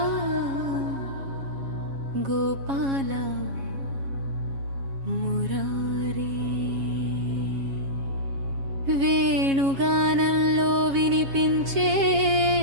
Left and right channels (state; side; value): late; left; 7.3 ms